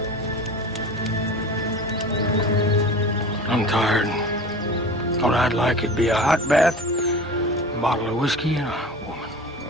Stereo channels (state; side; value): normal; both; correlation 0.35